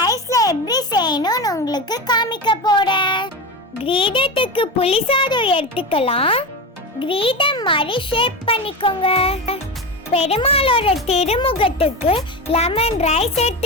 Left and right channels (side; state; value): both; normal; correlation 0.22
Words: எப்படி செய்யணும்னு உங்களுக்கு காமிக்க போறேன். கிரீடத்துக்கு புளி சாதம் எடுத்துக்கலாம். கிரீடம் மாதிரி ஷேப் பண்ணிக்கோங்க. பெருமாளோட திருமுகத்துக்கு லெமன் ரைஸ்